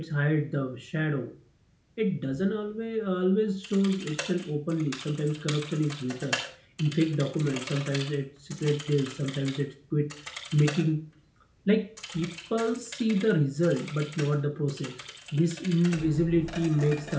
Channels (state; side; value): identical; both; correlation 1.00